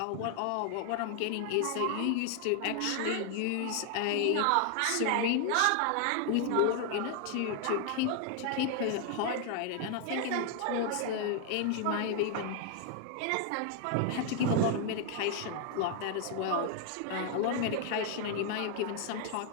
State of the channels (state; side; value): different; both; correlation 0.00